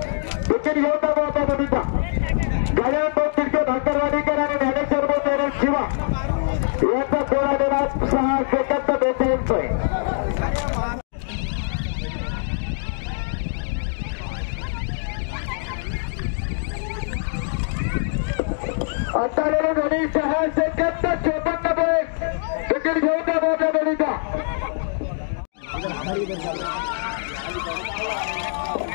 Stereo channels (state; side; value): silent; right; digital silence